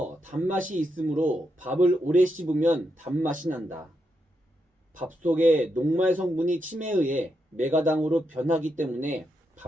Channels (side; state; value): both; normal; correlation 0.83